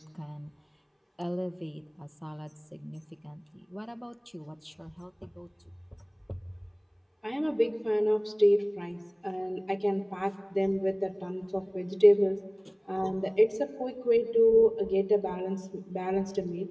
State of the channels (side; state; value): both; identical; correlation 1.00